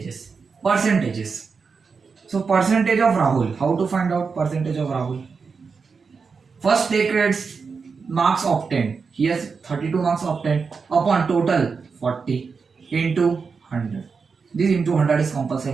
So percentage of Rahul. How to find out percentage of Rahul? First take rates marks obtained. He has 32 marks obtained upon total 40 into 100. This into 100 is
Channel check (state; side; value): quieter; left; 5.2 dB